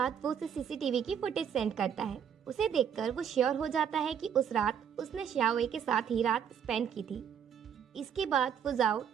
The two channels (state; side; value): quieter; left; 8.2 dB